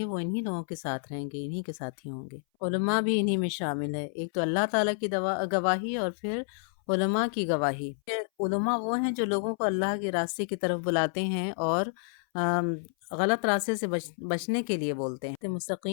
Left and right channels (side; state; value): right; silent; 58 dB below the other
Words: وہ انہی لوگوں کے ساتھ رہیں گے، انہی کے ساتھ ہی ہوں گے۔ علماء بھی انہی میں شامل ہے، ایک تو اللہ تعالیٰ کی گواہی، اور پھر علماء کی گواہی۔ علماء وہ ہیں جو لوگوں کو اللہ کے راستے کی طرف بلاتے ہیں اور غلط راستے سے بچنے کے لیے بولتے ہیں۔